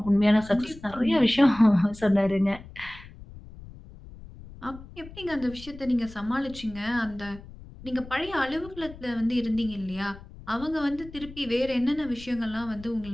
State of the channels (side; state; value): left; noise; rumble, 17 dB below the sound